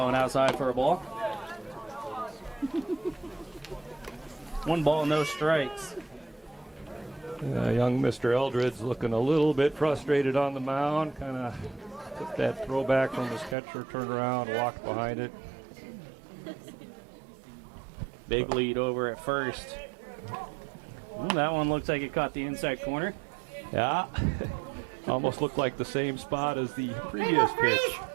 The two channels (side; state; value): left; drops out; at 13.6 s